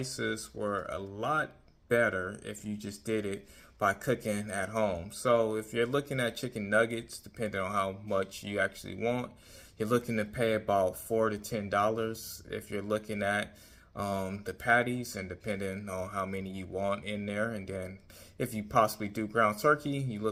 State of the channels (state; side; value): identical; both; correlation 1.00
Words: were a lot better if you just did it by cooking at home. So if you're looking at chicken nuggets, depending on how much you actually want, you're looking to pay about $4 to $10. If you're looking at the patties, and depending on how many you want in there, and then if you possibly do ground turkey, you're